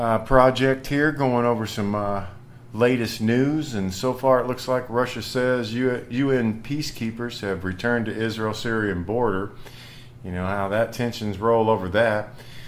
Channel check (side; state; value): both; identical; correlation 1.00